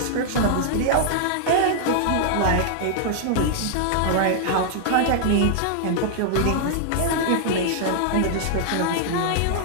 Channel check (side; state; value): both; different; correlation -0.01